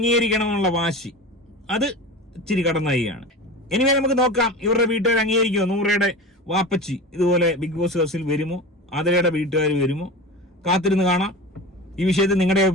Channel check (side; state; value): both; normal; correlation 0.30